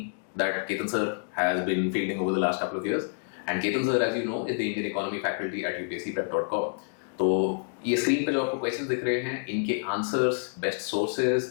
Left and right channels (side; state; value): right; silent; digital silence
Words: that Ketan Sir has been fielding over the last couple of years. And Ketan Sir, as you know, is the Indian Economy faculty at UPSCprep.com. तो ये screen पे जो आपको questions दिख रहे हैं, इनके answers, best sources